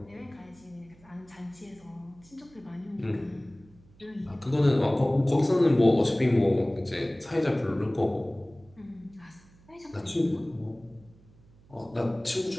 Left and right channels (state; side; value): noise; right; hum, 27 dB below the sound